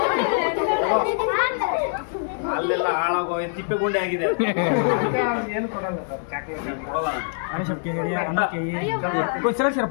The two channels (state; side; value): silent; right; digital silence